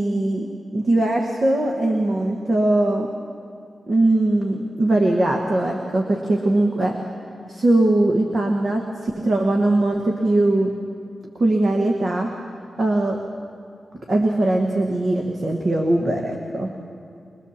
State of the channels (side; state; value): both; normal; correlation 0.95